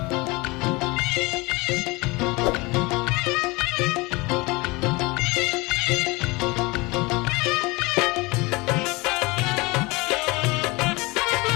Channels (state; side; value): quieter; right; 24.4 dB